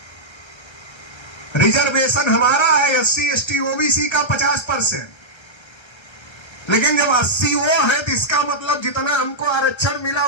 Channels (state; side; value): late; right; 1.3 ms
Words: रिजर्वेशन हमारा है SC ST OBC का 50%, लेकिन जब 80 वो है तो इसका मतलब जितना हमको आरक्षण मिला